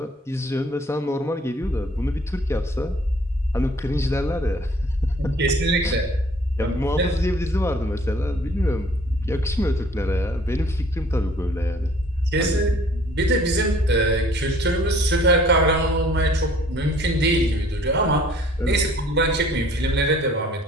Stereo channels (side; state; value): both; normal; correlation 0.55